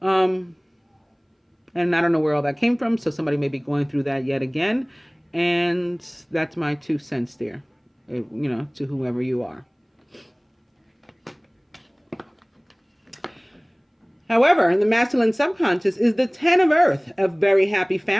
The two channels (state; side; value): identical; both; correlation 1.00